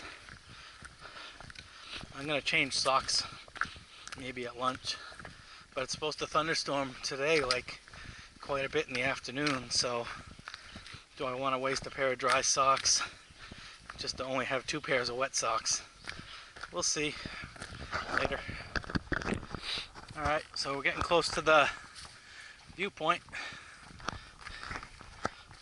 I'm gonna change socks maybe at lunch, but it's supposed to thunderstorm today, like quite a bit in the afternoon. So do I want to waste a pair of dry socks just to only have 2 pairs of wet socks? We'll see later. Alright, so we're getting close to the viewpoint.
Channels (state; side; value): identical; both; correlation 1.00